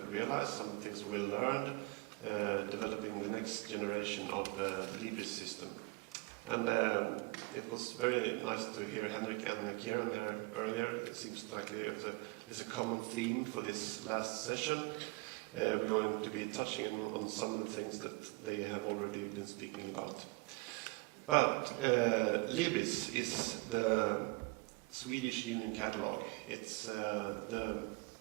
realized, some of the things we learned, developing the next generation of the Libris system. And it was very nice to hear Henrik and Kieran here earlier. It seems like there's a common theme for this last session. We're going to be touching on some of the things that they have already been speaking about. But Libris is the Swedish Union Catalog. It's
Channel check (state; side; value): quieter; left; 25.6 dB